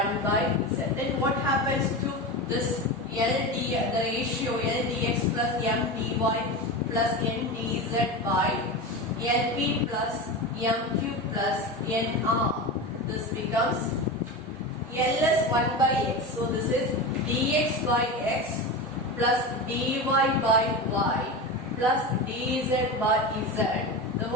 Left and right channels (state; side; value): normal; both; correlation 0.24